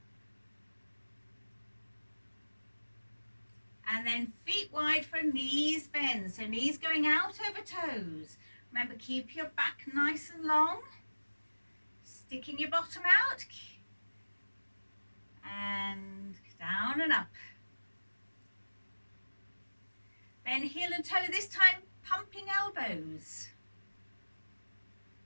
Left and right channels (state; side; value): inverted; both; correlation -1.00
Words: And then feet wide for knees bend. So knees going out over toes. Remember, keep your back nice and long. Sticking your bottom out. And down and up. Then heel and toe, this time pumping elbows.